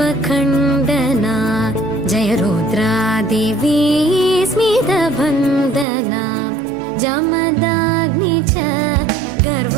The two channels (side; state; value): left; drops out; at 5.9 s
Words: जय रुद्रादेवी स्मितवन्दना जमदाग्नि च